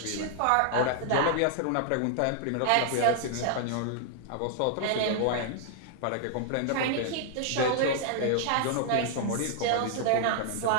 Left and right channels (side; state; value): both; different; correlation -0.01